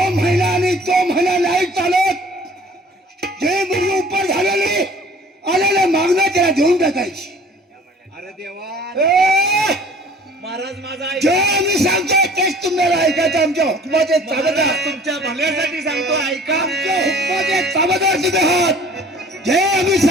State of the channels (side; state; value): both; normal; correlation 0.50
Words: महिना आणि तो महिना नाही चालत जे मुलगी उपर झालेली आलेले मागणं त्याला देऊन टाकायची अरे देवा ए, महाराज माझा जे आम्ही सांगतोय तेच तुम्हाला ऐकायचं आमच्या हुकमाचे चाबदार तुमच्या भल्यासाठी सांगतो ऐका. आमच्या हुकमाचे चाबदार तुम्ही आहात जे आम्ही